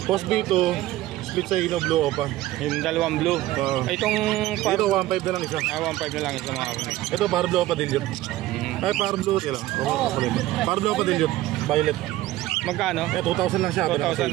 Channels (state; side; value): quieter; left; 15.8 dB